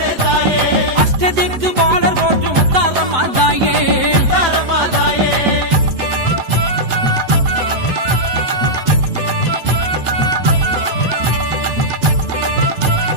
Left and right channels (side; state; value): left; late; 7.9 ms